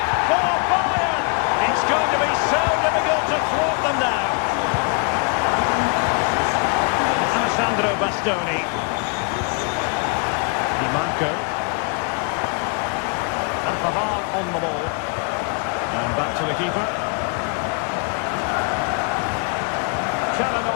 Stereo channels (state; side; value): quieter; right; 37.8 dB